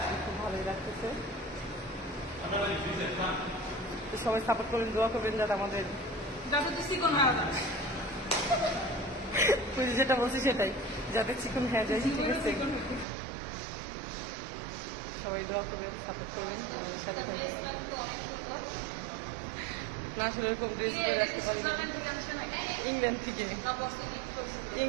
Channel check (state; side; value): drops out; left; at 13.1 s